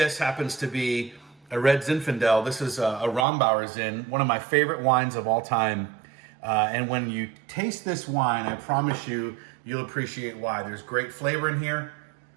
happens to be a red Zinfandel. This is a Rombauer Zin, one of my favorite wines of all time. And when you taste this wine, I promise you, you'll appreciate why. There's great flavor in here.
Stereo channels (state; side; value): drops out; left; at 3.2 s